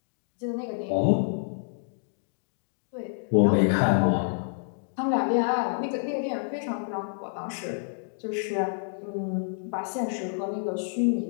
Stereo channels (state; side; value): silent; right; digital silence